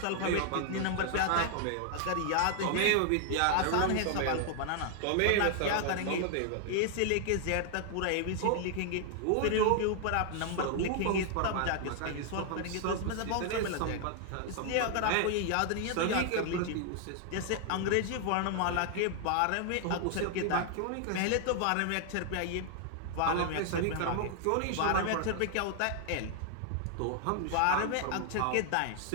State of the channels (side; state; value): both; different; correlation 0.00